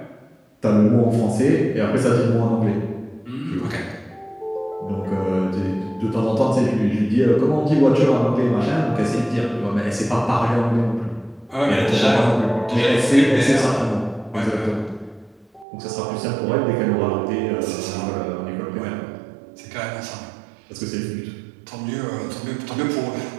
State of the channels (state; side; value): drops out; left; at 15.7 s